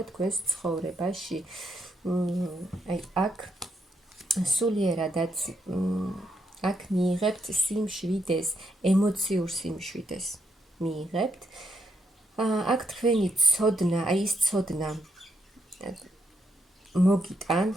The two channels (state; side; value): normal; both; correlation 0.79